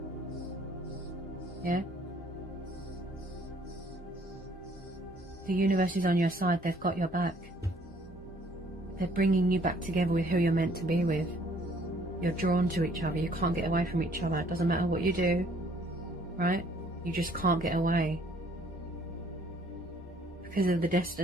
yeah? The universe is on your side. They've got your back. They're bringing you back together with who you're meant to be with. You're drawn to each other. You can't get away from each other. It doesn't matter what you do, right? You just can't get away. Because of the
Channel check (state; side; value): normal; both; correlation 0.60